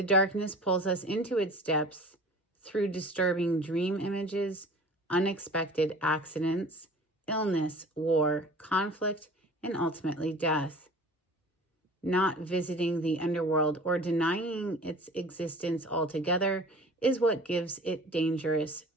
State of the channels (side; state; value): both; normal; correlation 0.43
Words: darkness pulls us into its depths through disturbing dream images, unexpected accidents, illness, war, conflict, and ultimately death. Not visiting the underworld or denying its existence altogether is what gives it dangerous